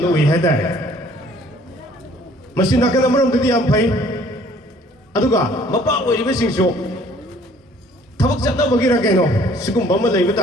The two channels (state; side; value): normal; both; correlation 0.57